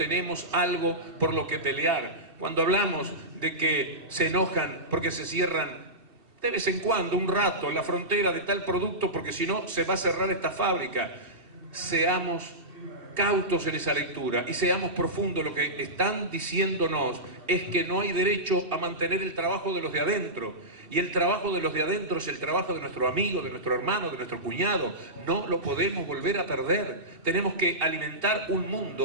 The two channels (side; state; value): left; late; 2.7 ms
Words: algo por lo que pelear. Cuando hablamos de que se enojan porque se cierran de vez en cuando, un rato, la frontera de tal producto, porque si no se va a cerrar esta fábrica, seamos cautos en esa lectura y seamos profundos. Lo que están diciéndonos es que no hay derecho a mantener el trabajo de los de adentro, y el trabajo de los de adentro es el trabajo de nuestro amigo, de nuestro hermano, de nuestro cuñado. No lo podemos volver a perder. Tenemos que alimentar un